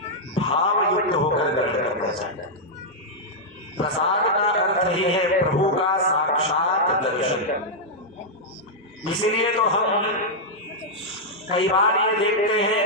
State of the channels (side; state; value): both; normal; correlation -0.05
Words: भाव युक्त होकर ग्रहण करना चाहिए। प्रसाद का अर्थ ही है प्रभु का साक्षात दर्शन। इसीलिए तो हम कई बार ये देखते